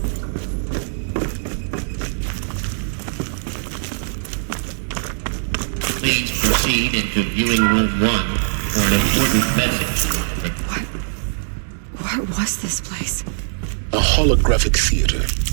Please proceed into viewing room 1 for an important message. What was this place? A holographic theater.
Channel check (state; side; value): silent; left; digital silence